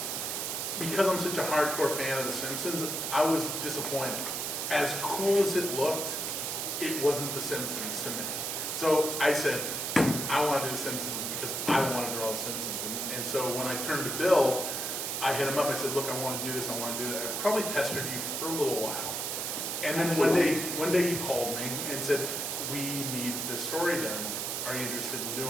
because I'm such a hardcore fan of The Simpsons, I was disappointed. As cool as it looked, it wasn't The Simpsons to me. So I said, I want to do The Simpsons because I want to draw The Simpsons. And so when I turned to Bill, I hit him up. I said, look, I want to do this. I want to do that. I probably pestered you for a little while. And then one day you called me and said, we need this story done. Are you interested in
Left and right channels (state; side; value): noise; right; hiss, 2 dB below the sound